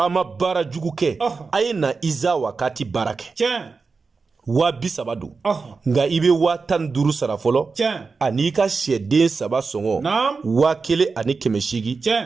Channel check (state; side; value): quieter; left; 4.5 dB